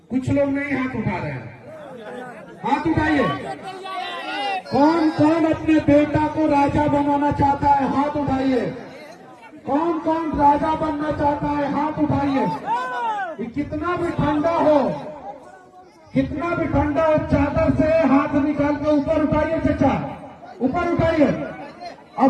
कुछ लोग नहीं हाथ उठा रहे हैं, हाथ उठाइए। कौन कौन अपने बेटा को राजा बनाना चाहता है? हाथ उठाइए। कौन कौन राजा बनना चाहता है? हाथ उठाइए। कितना भी ठंडा हो, कितना भी ठंडा हो, चादर से हाथ निकाल के ऊपर उठाइए चाचा, ऊपर उठाइए।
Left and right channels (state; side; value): identical; both; correlation 1.00